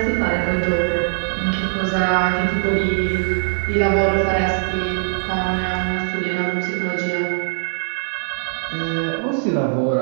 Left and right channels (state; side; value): silent; left; digital silence